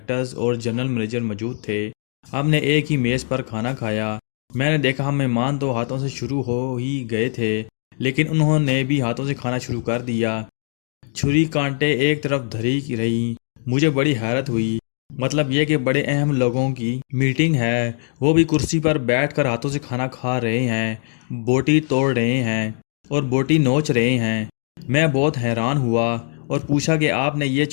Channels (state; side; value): silent; right; digital silence